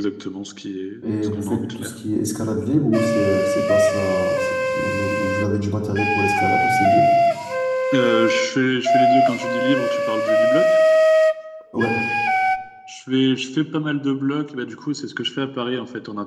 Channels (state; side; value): identical; both; correlation 1.00